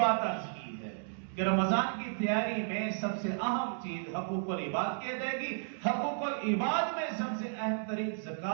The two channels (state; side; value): silent; left; digital silence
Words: عرض کی ہے کہ رمضان کی تیاری میں سب سے اہم چیز حقوق العباد کی ادائیگی، حقوق العباد میں سب سے اہم ترین